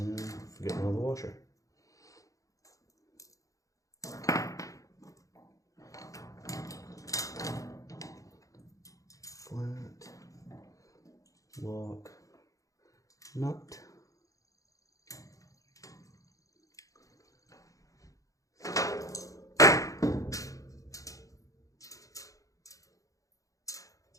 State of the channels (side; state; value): right; late; 0.16 ms